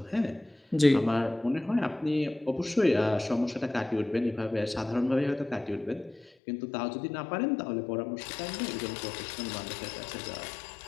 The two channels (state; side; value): drops out; right; at 6.3 s